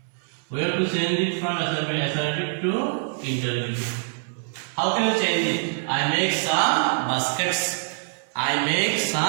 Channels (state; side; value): silent; left; digital silence